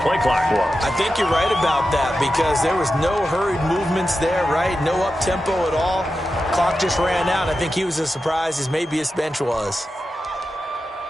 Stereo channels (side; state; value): both; normal; correlation 0.91